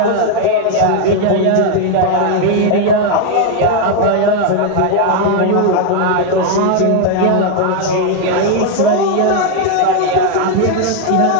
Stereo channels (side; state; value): both; different; correlation 0.01